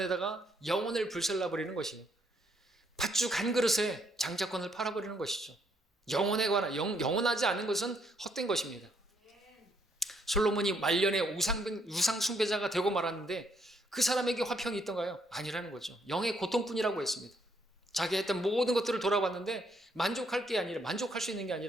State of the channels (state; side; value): normal; both; correlation 0.71